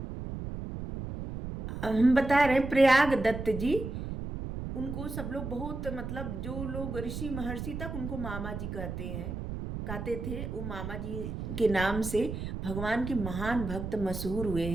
हम बता रहे हैं प्रयाग दत्त जी, उनको सब लोग बहुत, मतलब जो लोग ऋषि महर्षि तक उनको मामा जी कहते थे। वो मामा जी के नाम से भगवान के महान भक्त मशहूर हुए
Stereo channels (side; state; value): right; noise; rumble, 6 dB below the sound